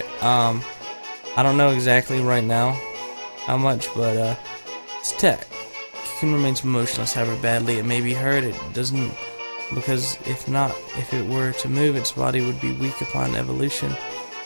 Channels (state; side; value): inverted; both; correlation -1.00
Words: I don't know exactly right now how much, but it's tech. Cocoon remains motionless, however badly it may be hurt. It doesn't, because if it were to move, its body would be weak upon evolution.